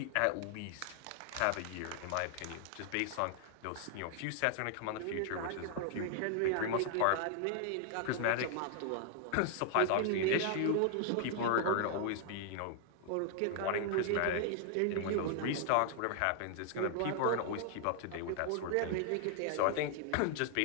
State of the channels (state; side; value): different; both; correlation 0.00